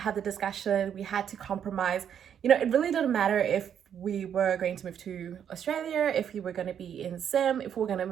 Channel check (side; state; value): left; quieter; 8.7 dB